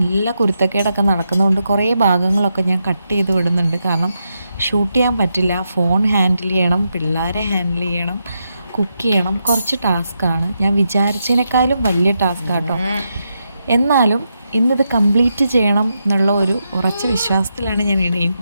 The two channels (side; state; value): both; inverted; correlation -0.84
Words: കുരുത്തക്കേടൊക്കെ നടക്കുന്നതുകൊണ്ട് കുറേ ഭാഗങ്ങളൊക്കെ ഞാൻ കട്ട് ചെയ്ത് വിടുന്നുണ്ട്. കാരണം ഷൂട്ട് ചെയ്യാൻ പറ്റില്ല. ഫോൺ ഹാൻഡിൽ ചെയ്യണം, പിള്ളേരെ ഹാൻഡിൽ ചെയ്യണം, കുക്ക് ചെയ്യണം. കുറച്ച് ടാസ്ക്കാണ്. ഞാൻ വിചാരിച്ചതിനേക്കാളും വലിയ ടാസ്ക്കാട്ടോ. എന്നാലും ഇന്നിത് കംപ്ലീറ്റ് ചെയ്യണം എന്നുള്ള ഒരു ഉറച്ച വിശ്വാസത്തിലാണ് ഞാൻ